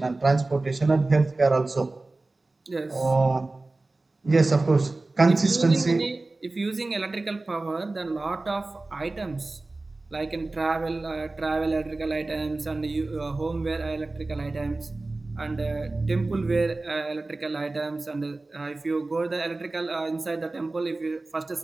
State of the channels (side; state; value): left; quieter; 3.2 dB